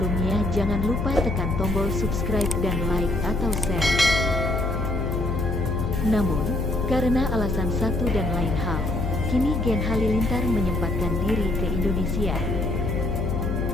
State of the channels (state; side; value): noise; left; hum, 2 dB below the sound